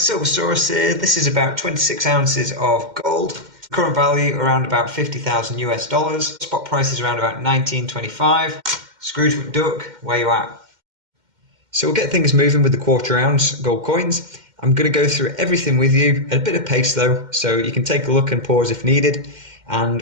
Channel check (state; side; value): late; left; 2.1 ms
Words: here. This is about 26 ounces of gold. Current value around about 50,000 US dollars. Spot price is around about 19.25. Scrooge McDuck, where you at? So we'll get things moving with the quarter ounce gold coins. I'm going to go through everything with you at a bit of pace though, so you can take a look and pause if needed.